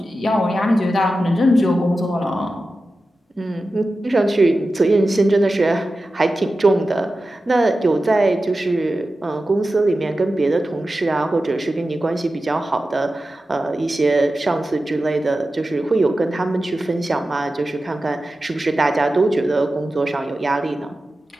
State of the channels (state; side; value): normal; both; correlation 0.93